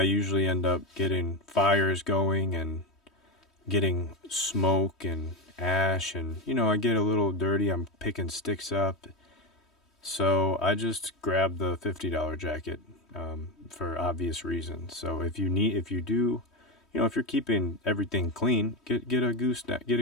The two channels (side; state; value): right; late; 3.1 ms